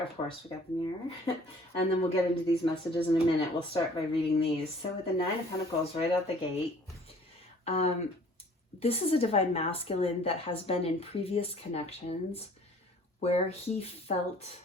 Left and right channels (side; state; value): both; normal; correlation 0.53